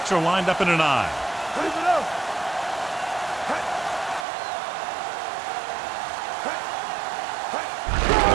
are lined up in an eye. Leave it up.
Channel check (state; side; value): drops out; left; at 4.2 s